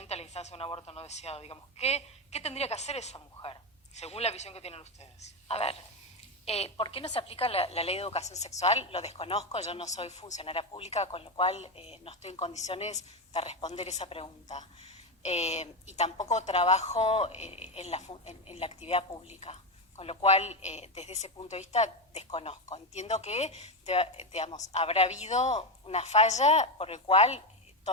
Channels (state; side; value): normal; both; correlation 0.12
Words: a la instancia de un aborto no deseado? Digamos, ¿qué tendría que hacer esa mujer, según la visión que tienen ustedes? A ver, ¿por qué no se aplica la ley de educación sexual? Lo desconozco, yo no soy funcionaria pública, con lo cual no estoy en condiciones de responder esa pregunta. Y tampoco trabajo en la actividad pública, con lo cual, desde ese punto de vista, desconozco. Entiendo que, digamos, habrá habido una falla por el cual